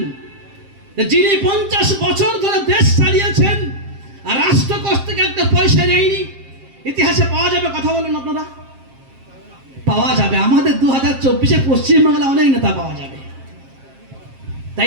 যিনি 50 বছর ধরে দেশ চালিয়েছেন আর রাষ্ট্রকোষ থেকে একটা পয়সা নেয়নি? ইতিহাসে পাওয়া যাবে? কথা বলুন আপনারা। পাওয়া যাবে। আমাদের 2024-এ পশ্চিমবাংলা অনেক নেতা পাওয়া যাবে,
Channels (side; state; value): left; late; 7.5 ms